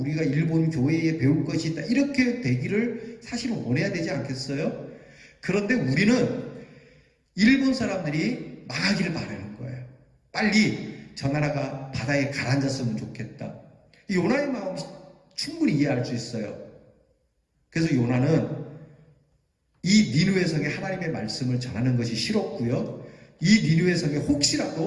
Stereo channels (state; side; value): identical; both; correlation 1.00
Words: 일본 교회에 배울 것이 있다 이렇게 되기를 사실은 원해야 되지 않겠어요? 그런데 우리는 일본 사람들이 망하기를 바라는 거예요. 빨리 저 나라가 바다에 가라앉았으면 좋겠다. 이 요나의 마음 충분히 이해할 수 있어요. 그래서 요나는 이 니느웨 성에 하나님의 말씀을 전하는 것이 싫었고요. 이 니느웨 성에